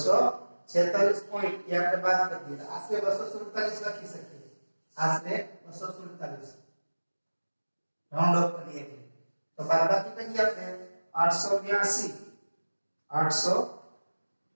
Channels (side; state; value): both; inverted; correlation -1.00